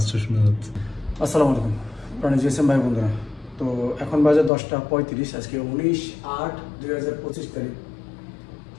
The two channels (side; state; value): right; drops out; at 4.5 s